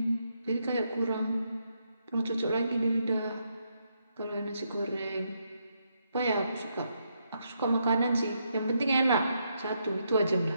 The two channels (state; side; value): inverted; both; correlation -0.79